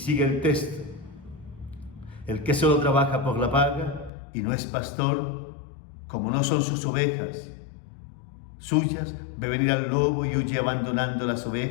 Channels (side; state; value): right; drops out; at 4.1 s